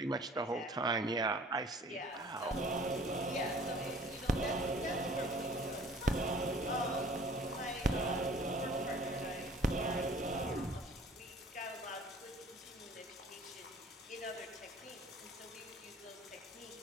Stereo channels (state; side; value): normal; both; correlation 0.51